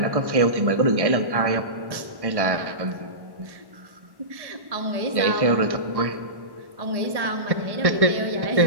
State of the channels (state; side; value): late; left; 1.1 ms